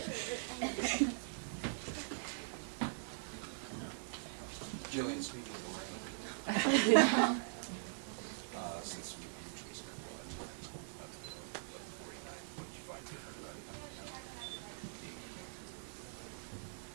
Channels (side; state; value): left; silent; digital silence